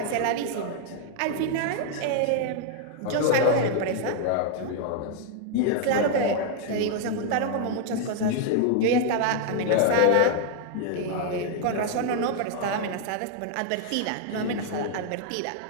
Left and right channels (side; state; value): both; different; correlation 0.00